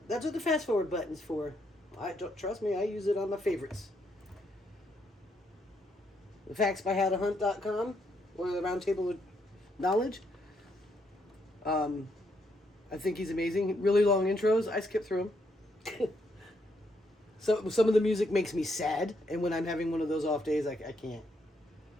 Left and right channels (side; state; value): both; normal; correlation 0.76